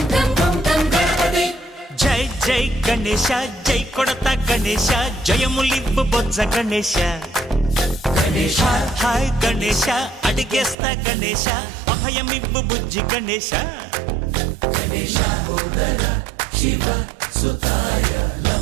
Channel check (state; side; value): drops out; left; at 10.8 s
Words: గం గం గం గణపతి జై జై గణేశ జై కొడత గణేశ జయములివ్వు బొజ్జ గణేశ హాయ్ హాయ్ గణేశ అడిగేస్తా గణేశ అభయమివ్వు బుజ్జి గణేశ శివ సుతాయ